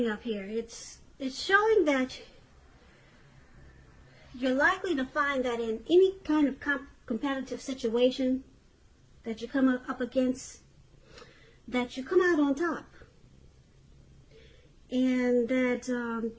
up here, it's showing that you're likely to find that in any kind of competitive situation that you come up against, that you come out on top. And that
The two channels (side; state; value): both; identical; correlation 1.00